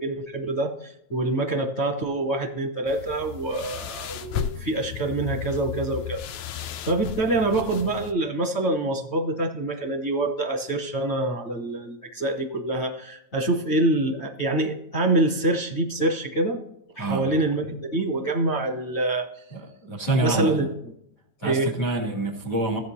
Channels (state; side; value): late; right; 9.1 ms